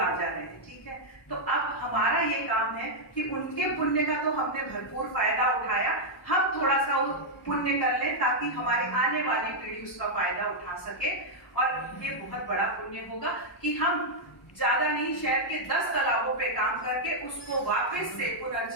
रहे। ठीक है, तो अब हमारा ये काम है कि उनके पुण्य का तो हमने भरपूर फायदा उठाया, हम थोड़ा सा पुण्य कर लें ताकि हमारे आने वाली पीढ़ी उसका फायदा उठा सके। और ये बहुत बड़ा पुण्य होगा कि हम ज्यादा नहीं, शहर के 10 तालाबों पे काम करके उसको वापस से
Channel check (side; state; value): both; normal; correlation -0.04